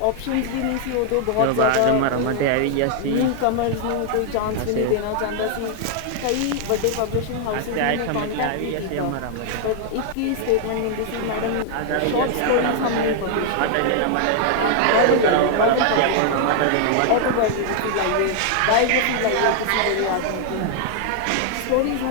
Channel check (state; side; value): different; both; correlation 0.00